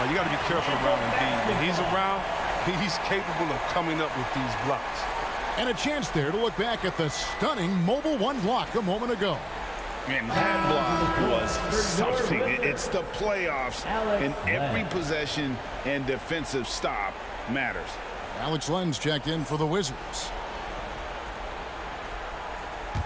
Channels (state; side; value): identical; both; correlation 1.00